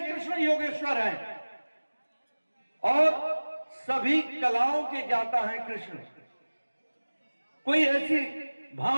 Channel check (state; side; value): inverted; both; correlation -1.00